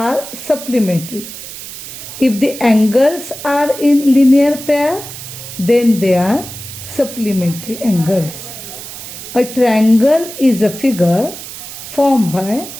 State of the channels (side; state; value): right; noise; hiss, 12 dB below the sound